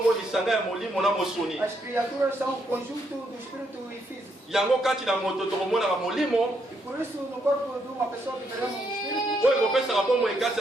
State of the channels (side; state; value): both; normal; correlation 0.76